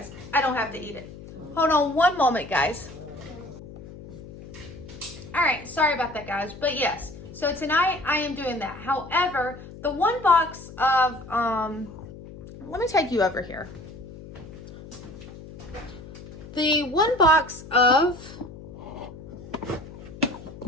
I don't have to eat it. Hold on one moment, guys. All right. Sorry about that, guys. But yes. So tonight I am doing that. However, the one box of, let me take you over here. The one box of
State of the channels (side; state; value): left; noise; hum, 15 dB below the sound